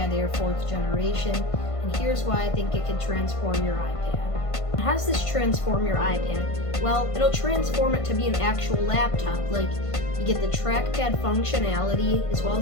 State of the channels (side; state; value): right; late; 1.5 ms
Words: Air 4th generation, and here's why I think it can transform your iPad. How does this transform your iPad? Well, it'll transform it to be an actual laptop. Like, you get the trackpad functionality as well